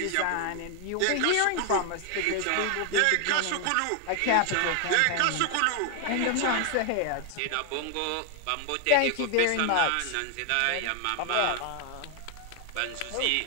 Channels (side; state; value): both; different; correlation 0.00